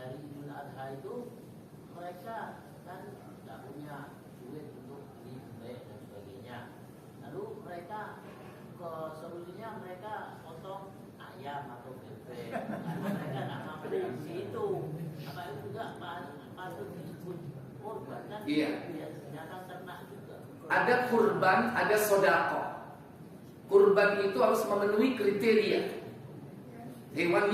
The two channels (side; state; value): both; identical; correlation 1.00